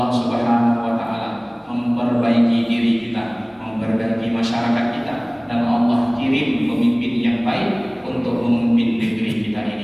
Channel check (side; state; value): both; identical; correlation 1.00